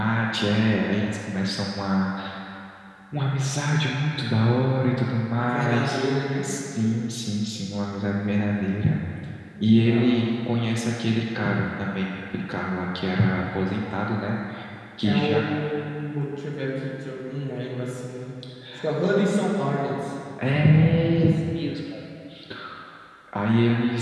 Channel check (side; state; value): both; identical; correlation 1.00